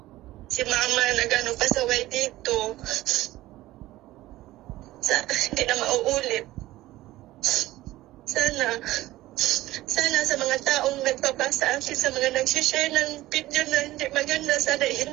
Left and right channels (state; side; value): quieter; left; 16.6 dB